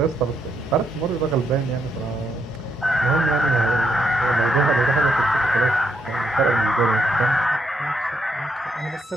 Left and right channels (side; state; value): both; normal; correlation 0.77